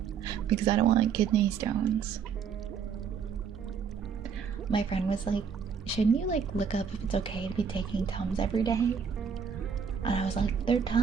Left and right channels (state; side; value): quieter; left; 6.7 dB